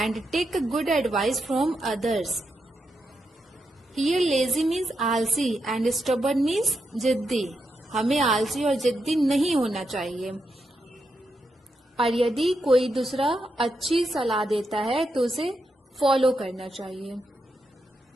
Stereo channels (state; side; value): normal; both; correlation 0.84